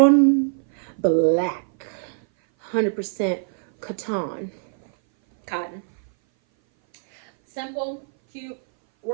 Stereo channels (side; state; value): left; silent; 59 dB below the other